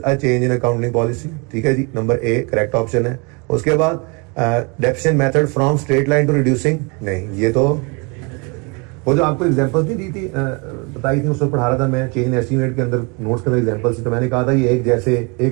a change in accounting policy, ठीक है जी, नंबर ए करेक्ट ऑप्शन है। उसके बाद deficient method from straight line to reducing, नहीं ये तो वो जो आपको एग्जांपल्स नहीं दी थी बताई थी उसमें पढ़ा रहा था मैं, चेंज इन एस्टीमेट के अंदर नोट्स के अंदर एग्जांपल्स थी, तो मैंने कहा था ये एक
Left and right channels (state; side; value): quieter; left; 31.2 dB